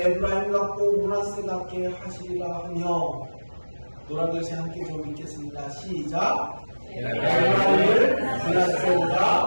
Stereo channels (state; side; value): inverted; both; correlation -1.00